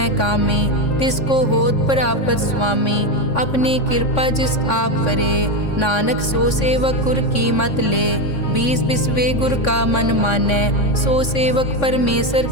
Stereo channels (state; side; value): late; right; 3.6 ms